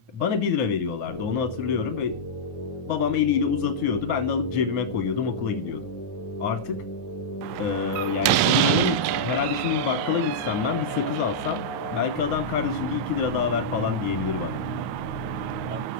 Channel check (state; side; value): late; left; 9.5 ms